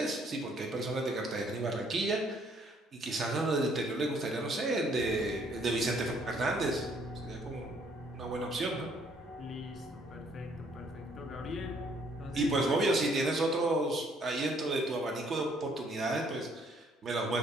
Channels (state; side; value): normal; both; correlation 0.65